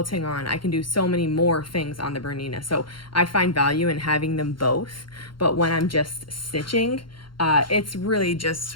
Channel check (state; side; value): late; right; 0.73 ms